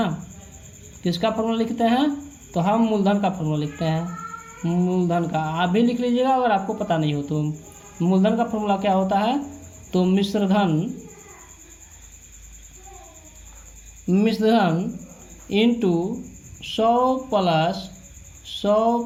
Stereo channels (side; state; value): both; identical; correlation 1.00